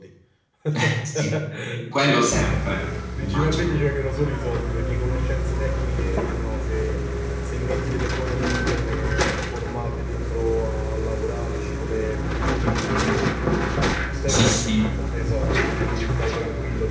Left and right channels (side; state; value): both; identical; correlation 1.00